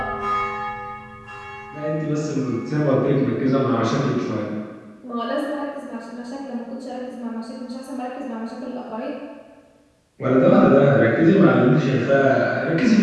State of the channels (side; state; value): both; identical; correlation 1.00